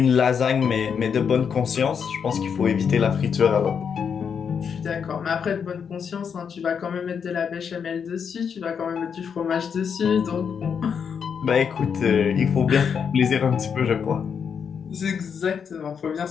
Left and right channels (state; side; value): quieter; right; 6.9 dB